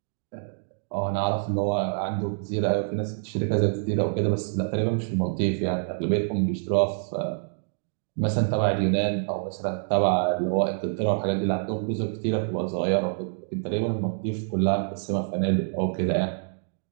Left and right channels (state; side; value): silent; left; digital silence